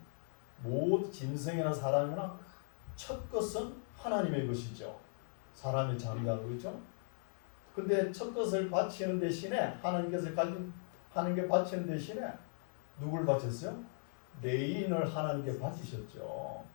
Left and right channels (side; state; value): right; silent; digital silence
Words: 짐승이나 사람이나 첫 것은 하나님의 것이죠. 사람의 장자로, 그렇죠? 근데 첫 것을 바치는 대신에 하나님께서 하나님께 바치는 대신에 누굴 바쳤어요? 레인을 하나님께 바치셨죠.